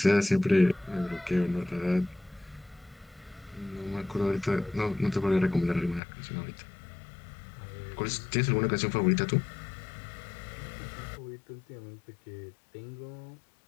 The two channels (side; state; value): right; drops out; at 6.0 s